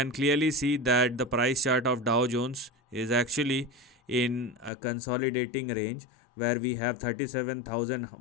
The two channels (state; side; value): drops out; right; at 4.7 s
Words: clearly see that the price chart of Dow Jones is actually in a consolidating range where we have